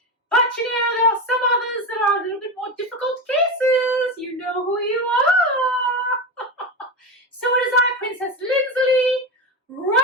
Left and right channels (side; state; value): both; normal; correlation 0.19